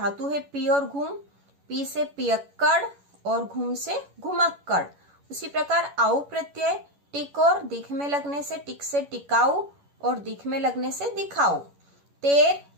है पी और घूम, पी से पियक्कड़ और घूम से घुमक्कड़। उसी प्रकार आउ प्रत्यय टिक और दिख में लगने से टिक से टिकाऊ, और दिख में लगने से दिखाऊ। तेर,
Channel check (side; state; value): left; late; 11 ms